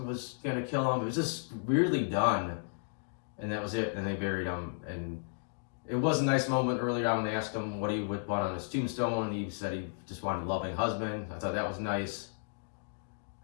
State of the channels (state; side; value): silent; right; digital silence